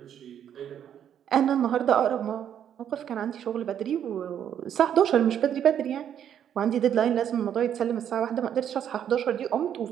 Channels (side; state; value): left; quieter; 9.5 dB